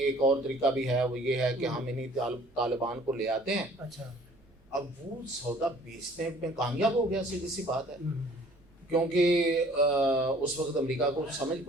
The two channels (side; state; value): right; noise; rumble, 30 dB below the sound